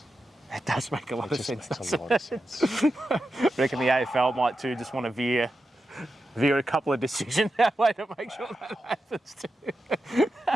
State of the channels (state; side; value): normal; both; correlation 0.90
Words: It does make a lot of sense. Makes a lot of sense. I reckon the AFL might too just want to veer a couple of decisions that way to make sure that happens too.